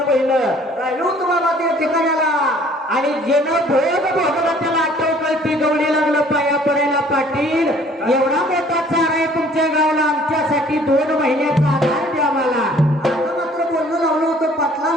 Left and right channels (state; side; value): normal; both; correlation 0.55